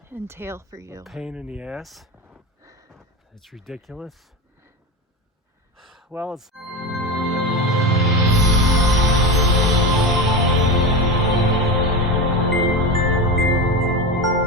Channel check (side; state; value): both; normal; correlation 0.21